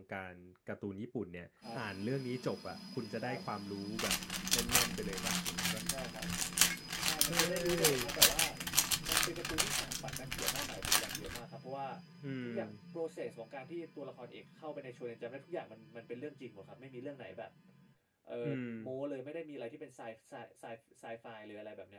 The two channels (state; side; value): identical; both; correlation 1.00